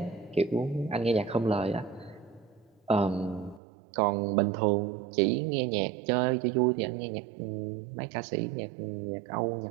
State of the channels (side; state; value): left; drops out; at 3.6 s